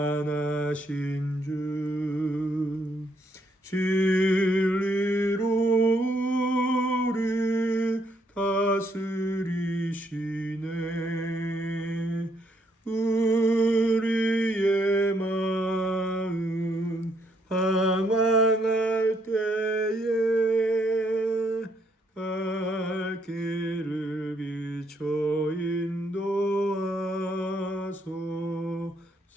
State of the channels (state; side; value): normal; both; correlation 0.72